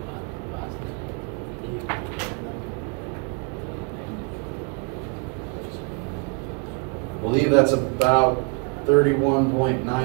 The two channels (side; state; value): left; quieter; 34.5 dB